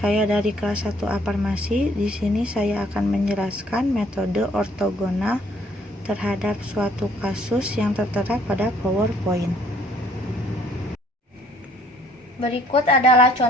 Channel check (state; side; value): normal; both; correlation 0.62